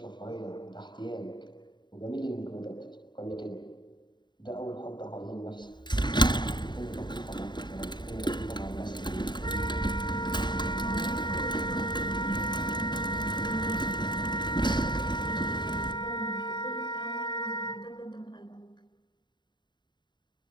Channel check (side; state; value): right; late; 0.22 ms